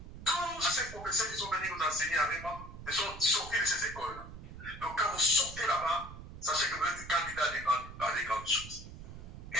tous ces professeurs qui sont venus nous enseigner à REMA, ils sont sortis de ces écoles-là. Donc quand vous sortez là-bas, sachez que vous êtes candidat à des grandes choses.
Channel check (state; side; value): noise; right; rumble, 13 dB below the sound